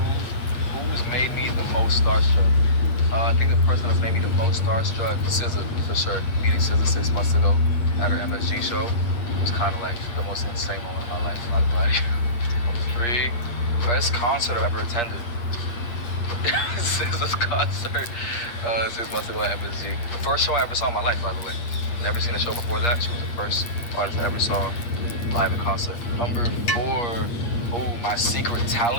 who's made me the most starstruck? I think the person that's made me the most starstruck, SZA, for sure. Meeting SZA 6 months ago at her MSG show was kind of like the most insane moment of my life, not gonna lie to you. Number 3, best concert I've ever attended. SZA's concert 6 months ago at MSG. The first show I ever saw in my life, by the way. Never seen a show before that. She was the first artist I ever saw live in concert. Number 4, my secret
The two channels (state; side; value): late; right; 8.5 ms